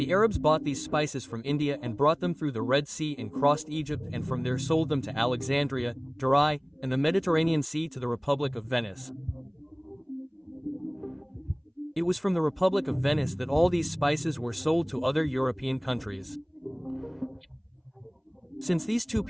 Arabs bought these spices from India and brought them through the Red Sea and crossed Egypt and from there sold them to Alexandria, Durai, and the Mediterranean Sea to the Republic of Venice. It was from the Republic of Venice that all these spices were sold to other European countries. Since these two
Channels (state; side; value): identical; both; correlation 1.00